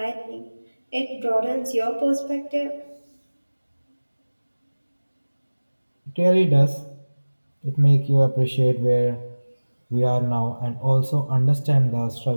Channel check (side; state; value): both; inverted; correlation -1.00